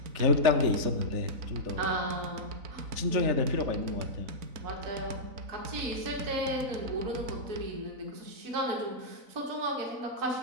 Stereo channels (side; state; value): left; late; 4.0 ms